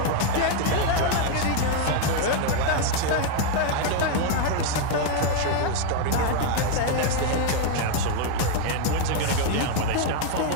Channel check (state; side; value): different; both; correlation 0.01